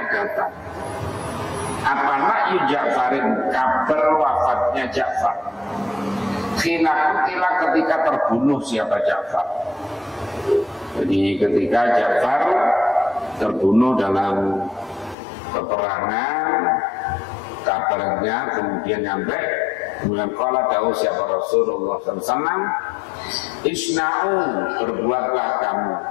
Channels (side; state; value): right; drops out; at 15.2 s